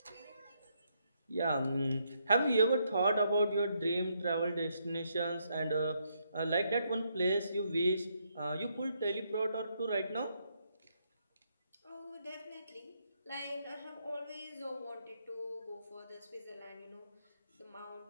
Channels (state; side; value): inverted; both; correlation -0.76